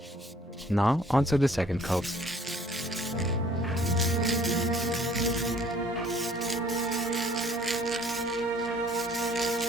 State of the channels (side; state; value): both; normal; correlation 0.57